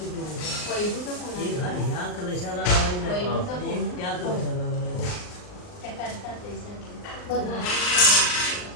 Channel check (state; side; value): late; right; 39 ms